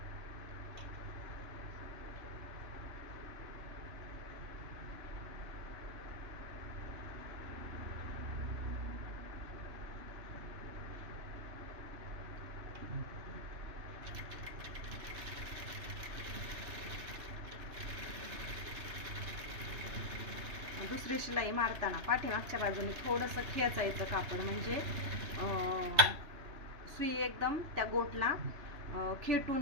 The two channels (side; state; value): left; late; 3.0 ms